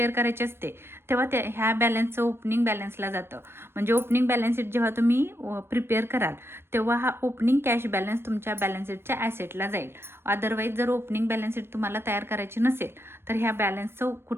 करायची असते तेव्हा ह्या बॅलन्सचं ओपनिंग बॅलन्सला जातं. म्हणजे ओपनिंग बॅलन्स शीट जेव्हा तुम्ही प्रिपेअर कराल तेव्हा हा ओपनिंग कॅश बॅलन्स तुमच्या बॅलन्स शीटच्या ॲसेटला जाईल. अदरवाईज जर ओपनिंग बॅलन्स शीट तुम्हाला तयार करायची नसेल तर ह्या बॅलन्सचं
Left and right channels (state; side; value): late; left; 0.12 ms